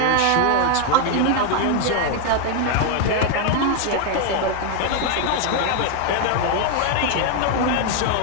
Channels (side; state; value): both; different; correlation 0.00